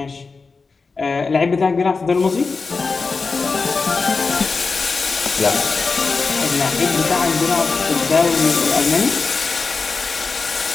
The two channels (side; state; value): right; quieter; 4.4 dB